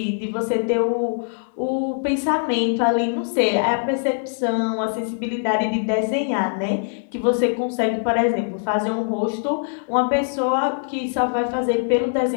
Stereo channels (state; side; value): silent; right; digital silence